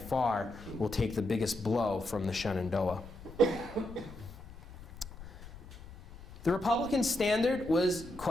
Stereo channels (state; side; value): noise; left; rumble, 16 dB below the sound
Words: will take the biggest blow from the Shenandoah. The Republican Standard was